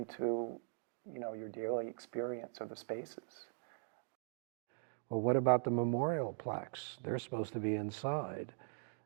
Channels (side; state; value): left; silent; digital silence